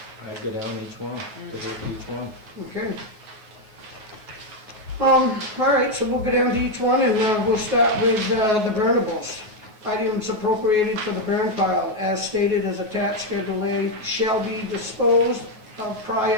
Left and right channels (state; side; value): late; left; 9.4 ms